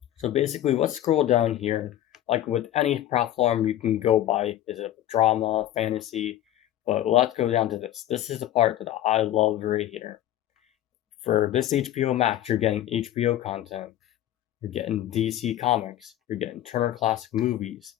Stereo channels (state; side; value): quieter; right; 12.7 dB